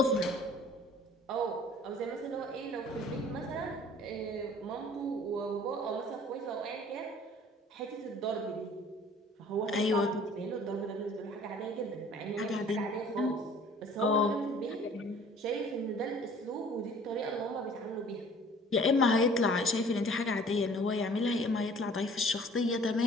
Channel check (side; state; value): both; normal; correlation 0.51